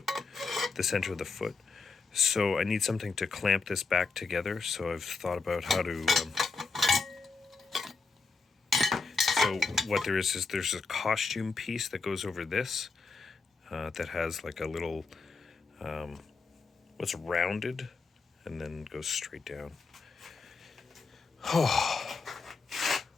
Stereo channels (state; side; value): quieter; right; 4.4 dB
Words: center of the foot. So I need something to clamp this back together. So I've thought about how to, so what there is there's a costume piece that goes over this that has like a little, what's rounded and then goes straight down. Oh,